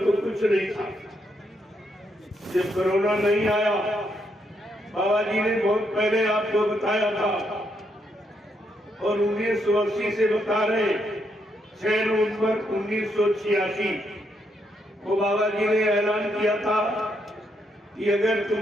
कुछ नहीं था। जब कोरोना नहीं आया, बाबा जी ने बहुत पहले आपको बताया था और 1980 से बता रहे, 6 नवंबर 1986 को बाबा जी ने ऐलान किया था कि अगर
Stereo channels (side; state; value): both; normal; correlation 0.77